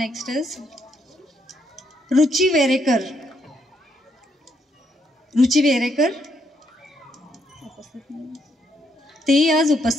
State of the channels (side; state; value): both; normal; correlation 0.75